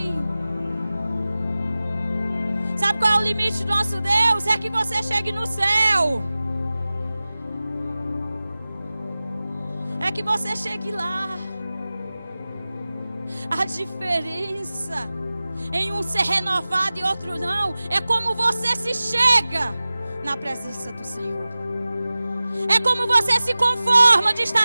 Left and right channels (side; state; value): both; inverted; correlation -0.96